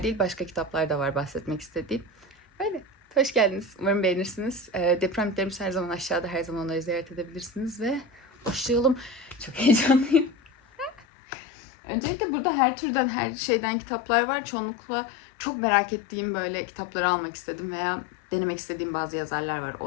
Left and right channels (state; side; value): drops out; right; at 11.1 s